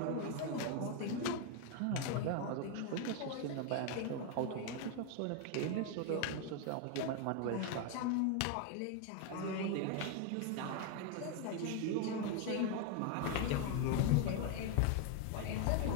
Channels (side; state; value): both; different; correlation 0.01